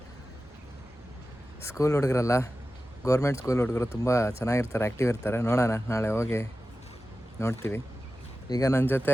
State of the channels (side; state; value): both; normal; correlation 0.94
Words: ಸ್ಕೂಲ್ ಹುಡುಗರಲ್ಲ, ಗೌರ್ಮೆಂಟ್ ಸ್ಕೂಲ್ ಹುಡುಗರು ತುಂಬ ಚೆನ್ನಾಗಿರ್ತಾರೆ, ಆ್ಯಕ್ಟಿವ್ ಇರ್ತಾರೆ. ನೋಡೋಣ, ನಾಳೆ ಹೋಗಿ ನೋಡ್ತೀವಿ. ಈಗ ನನ್ನ ಜೊತೆ